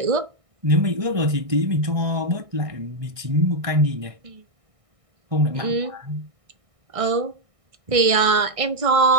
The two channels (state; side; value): late; left; 1.6 ms